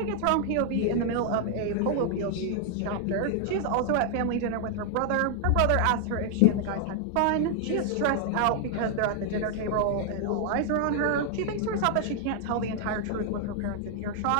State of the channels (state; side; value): different; both; correlation 0.00